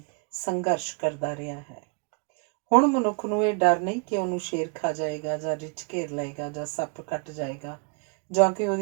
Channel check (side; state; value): left; quieter; 36.6 dB